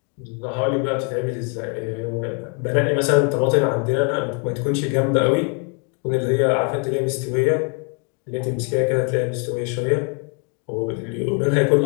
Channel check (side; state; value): right; quieter; 36.4 dB